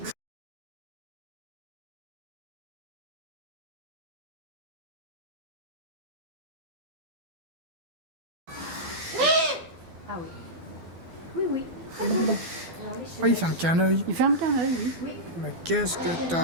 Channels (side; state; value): left; late; 12 ms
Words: Ah oui. Oui, oui. Oui, il ferme qu'un œil. Il ferme qu'un œil, oui. Oui. Mais qu'est-ce que